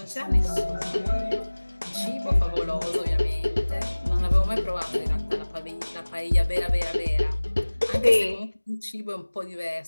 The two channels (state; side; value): inverted; both; correlation -1.00